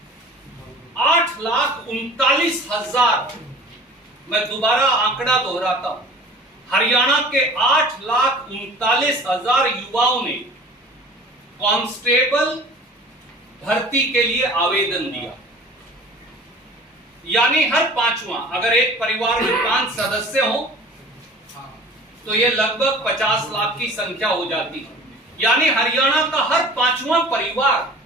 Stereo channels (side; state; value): both; normal; correlation 0.44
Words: 8,39,000, मैं दोबारा आंकड़ा दोहराता हूं, हरियाणा के 8,39,000 युवाओं ने कांस्टेबल भर्ती के लिए आवेदन दिया। यानी हर पांचवा, अगर एक परिवार में 5 सदस्य हो तो यह लगभग 50 लाख की संख्या हो जाती है। यानी हरियाणा का हर 5वां